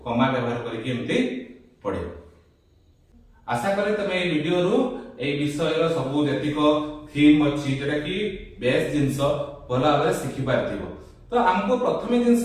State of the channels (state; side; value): identical; both; correlation 1.00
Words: कमा व्यवहार करके एमती पढिबो आशा करे तुम ए वीडियो रु ए विषय रो सब जतिक थीम अछि जेटा कि बेस जिंस भला भाबरे सिखि पारथिबो तो हमको प्रथम जिंस